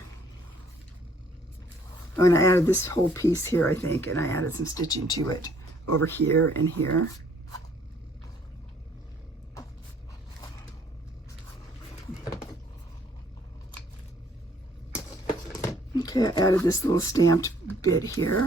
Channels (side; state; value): both; normal; correlation 0.62